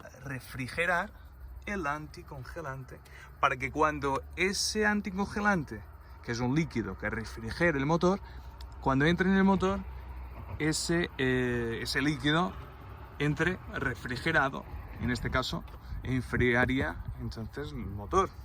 refrigerar el anticongelante, para que cuando ese anticongelante, que es un líquido que refrigera el motor, cuando entre en el motor, ese líquido entre refrigerado, en este caso enfriaría entonces el motor.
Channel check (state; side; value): identical; both; correlation 1.00